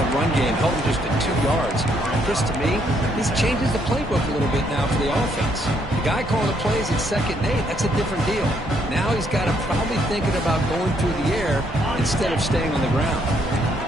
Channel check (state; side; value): normal; both; correlation 0.71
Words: run game, held them just at 2 yards. Chris, to me, this changes the playbook a little bit now for the offense. The guy calling the plays at 2nd and 8, that's a different deal. Now he's got to probably thinking about going through the air instead of staying on the ground.